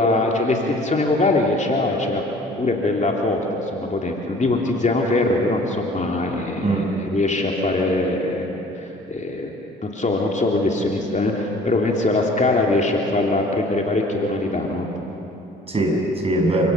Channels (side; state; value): both; normal; correlation 0.51